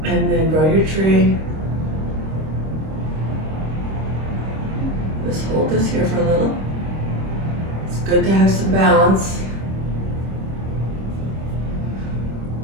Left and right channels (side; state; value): left; late; 26 ms